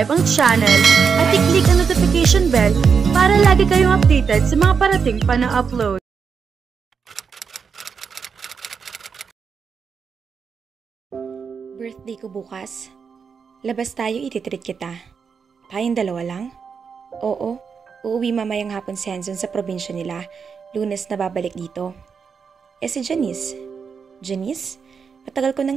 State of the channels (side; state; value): left; quieter; 6.1 dB